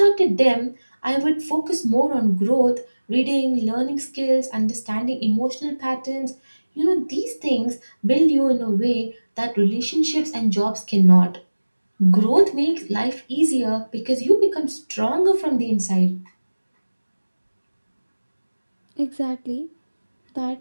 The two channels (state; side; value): inverted; both; correlation -1.00